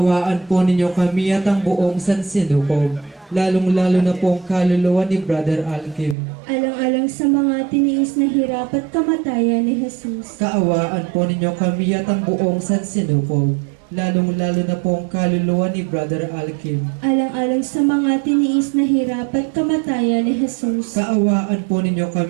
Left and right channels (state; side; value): drops out; left; at 6.2 s